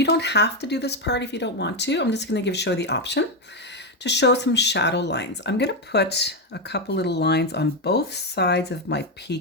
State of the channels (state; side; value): normal; both; correlation 0.07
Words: don't have to do this part if you don't want to, I'm just going to show you the option to show some shadow lines. I'm going to put a couple little lines on both sides of my